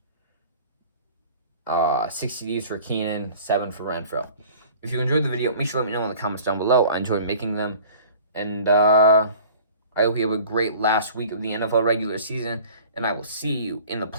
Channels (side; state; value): both; inverted; correlation -0.46